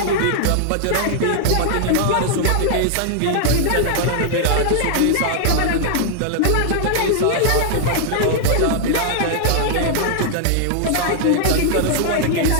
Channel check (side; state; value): both; different; correlation 0.00